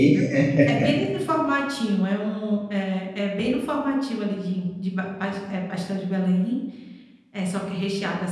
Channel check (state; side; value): identical; both; correlation 1.00